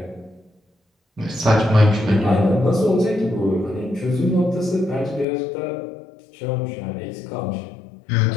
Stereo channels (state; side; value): drops out; right; at 5.2 s